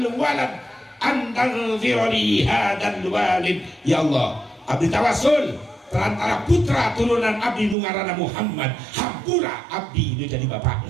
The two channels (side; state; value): left; drops out; at 7.8 s